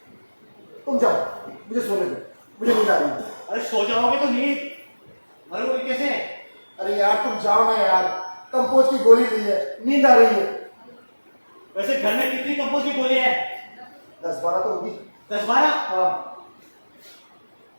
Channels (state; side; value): inverted; both; correlation -1.00